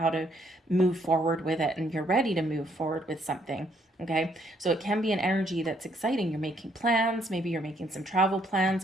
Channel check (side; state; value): both; normal; correlation 0.69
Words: to move forward with it. And you're ready to move forward with something. Okay, so it can be an energy that's exciting. You're making plans. Maybe you're making some travel